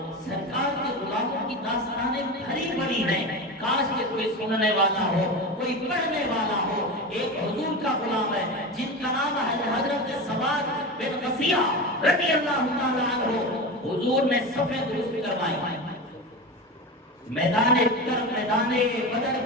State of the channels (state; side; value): normal; both; correlation 0.24